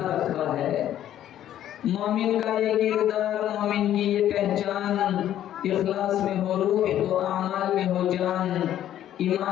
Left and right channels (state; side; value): quieter; right; 11.6 dB